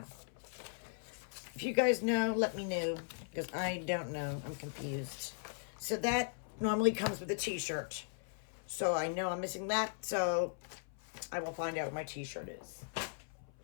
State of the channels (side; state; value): right; silent; 52 dB below the other